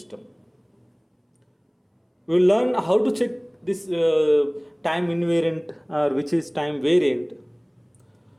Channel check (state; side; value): identical; both; correlation 1.00